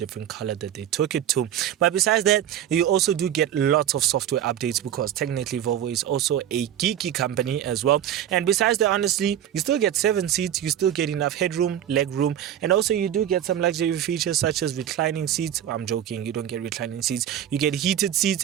color that they took it to. But besides that, you also do get lots of software updates, because technically Volvo is also a geeky company as well. And besides that, honestly, you still get 7 seats, you still get enough headroom, leg room, and also you do get some luxury features such as reclining seats. I'm joking, you don't get reclining seats, you get heated seats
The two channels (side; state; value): left; quieter; 10.7 dB